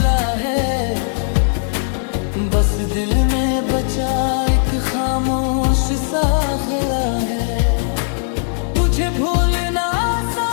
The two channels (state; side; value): silent; right; digital silence